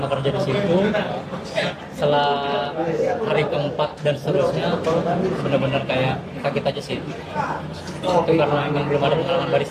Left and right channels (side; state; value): both; identical; correlation 1.00